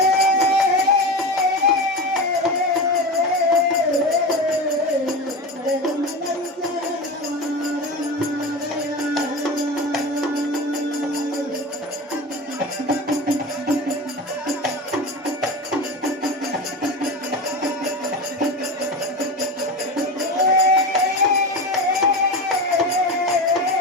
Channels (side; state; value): both; normal; correlation 0.25